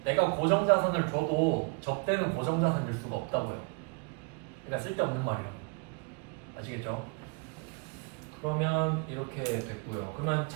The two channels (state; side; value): quieter; left; 31.0 dB